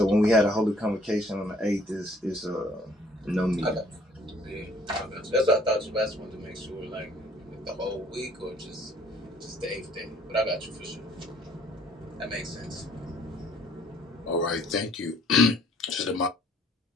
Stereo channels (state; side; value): normal; both; correlation 0.60